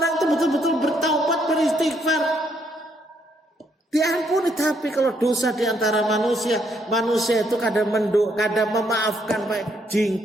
itu betul-betul bertaubat, beristighfar, diampuni. Tapi kalau dosa di antara manusia itu kadang memaafkan Pak,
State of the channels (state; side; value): normal; both; correlation 0.72